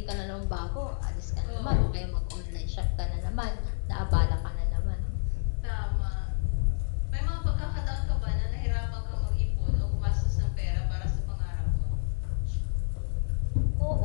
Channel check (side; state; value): right; silent; digital silence